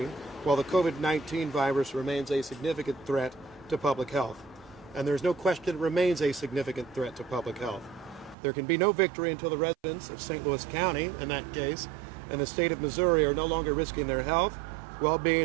while the COVID-19 virus remains a significant threat to public health. And there's no question it remains a significant threat to public health. There can be no victory until the residents of St. Louis County, in that case, and the state of Missouri are no longer risking their health,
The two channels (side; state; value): left; drops out; at 8.3 s